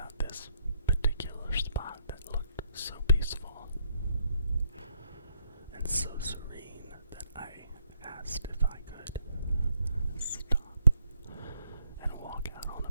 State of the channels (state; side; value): inverted; both; correlation -0.72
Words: this particular spot that looked so peaceful and so serene that I asked if I could stop and walk out on a